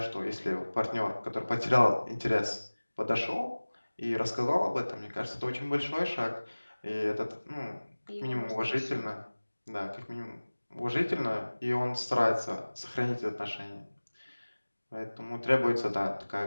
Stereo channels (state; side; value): inverted; both; correlation -1.00